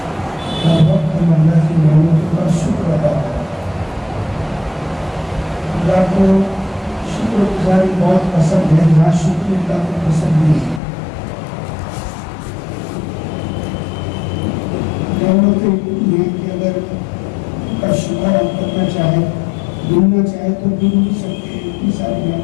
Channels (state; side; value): drops out; right; at 10.8 s